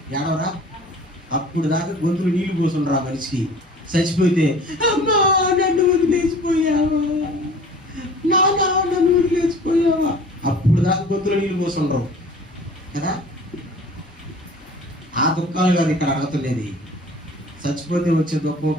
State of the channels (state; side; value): normal; both; correlation 0.46